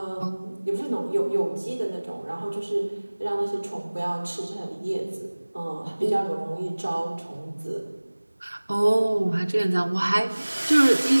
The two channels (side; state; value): both; inverted; correlation -1.00